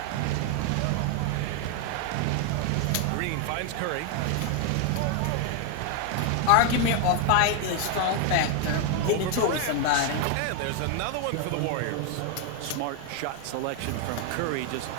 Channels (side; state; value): both; different; correlation 0.00